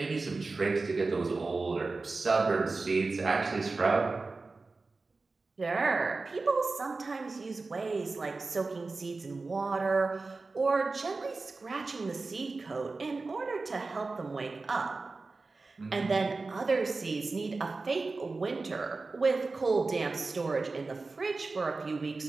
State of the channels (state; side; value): quieter; left; 3.8 dB